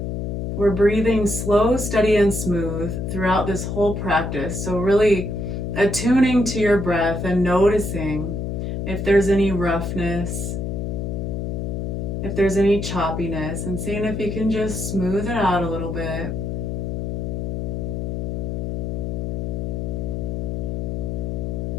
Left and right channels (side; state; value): left; noise; hum, 3 dB below the sound